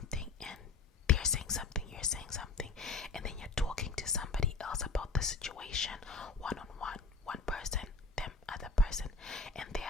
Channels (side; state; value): right; quieter; 4.2 dB